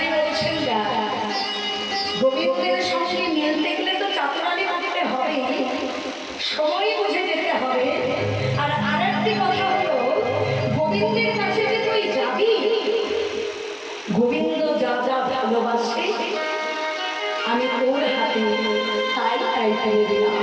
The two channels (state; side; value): identical; both; correlation 1.00